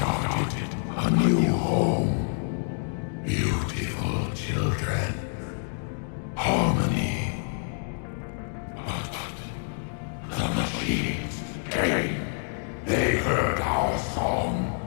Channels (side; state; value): right; silent; digital silence